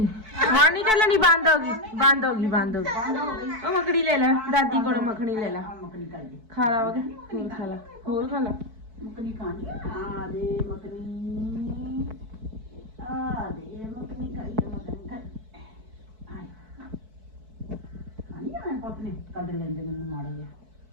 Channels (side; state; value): left; late; 4.6 ms